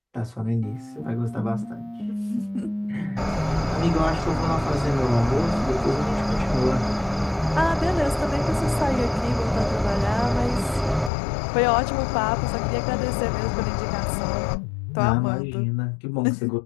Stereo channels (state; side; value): drops out; right; at 11.1 s